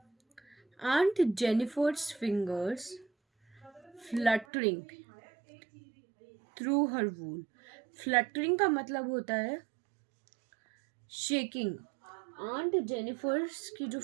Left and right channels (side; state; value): left; drops out; at 4.5 s